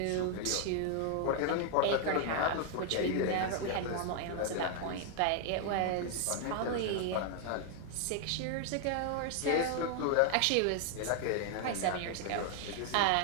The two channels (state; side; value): different; both; correlation 0.00